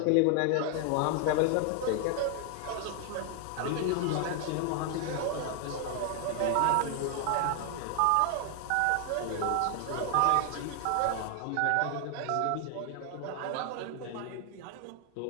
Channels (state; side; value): different; both; correlation 0.00